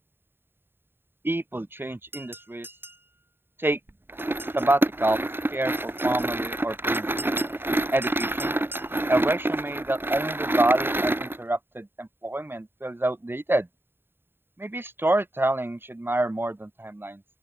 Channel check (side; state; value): left; late; 0.11 ms